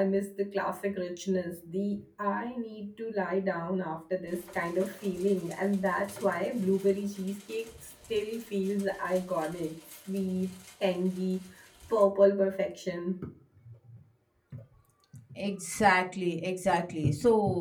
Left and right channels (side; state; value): both; identical; correlation 1.00